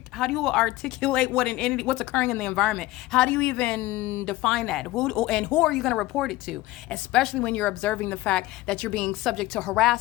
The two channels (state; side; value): quieter; right; 17.8 dB